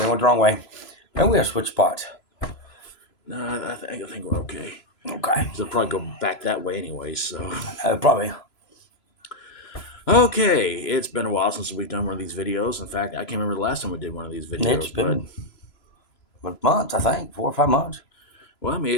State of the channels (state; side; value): late; right; 3.0 ms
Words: went the wrong way. Maybe we gotta switch spots. No, I think we're okay. Okay. So probably go back that way anyway. So Probably. okay, it's been a while since we've done one of these videos. In fact, I can't remember the last time we did one of these videos. It's been months, I think, 4 or 5 months. Well, I mean,